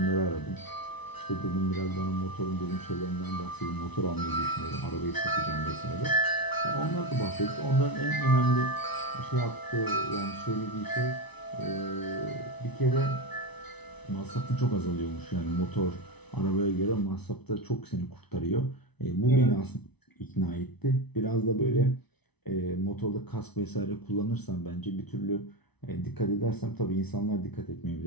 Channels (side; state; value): right; late; 0.99 ms